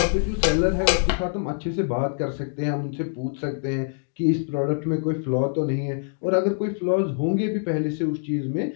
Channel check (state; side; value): silent; right; digital silence